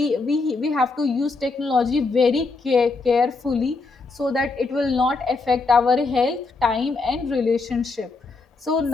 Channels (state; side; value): quieter; right; 3.8 dB